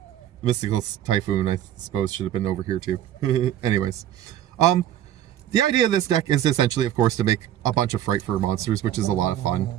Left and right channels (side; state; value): left; quieter; 11.5 dB